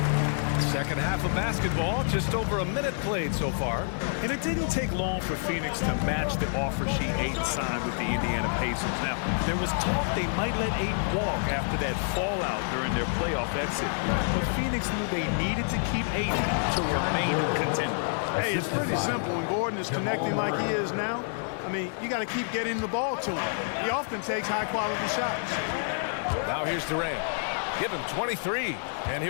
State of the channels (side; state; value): right; silent; digital silence